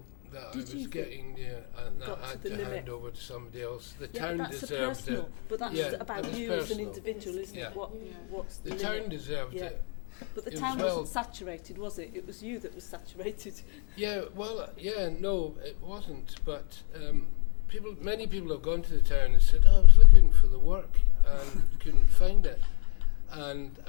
that I was getting there, and that I had to hand over to somebody else. The town but that's deserved personal. it. But that's about you as an individual, isn't it? What's the limit? The town deserved it. But the town wasn't saturated, was it? It was you that was saturated. No, it wasn't. But many people have gone to the town and said, I was looking for the work and couldn't find it. And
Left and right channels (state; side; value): quieter; right; 39.9 dB